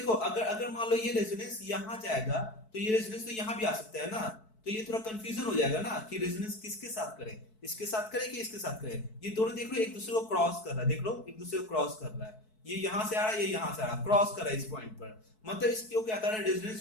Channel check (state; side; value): late; right; 4.6 ms